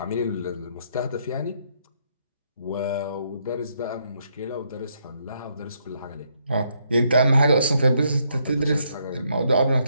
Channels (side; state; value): both; inverted; correlation -0.74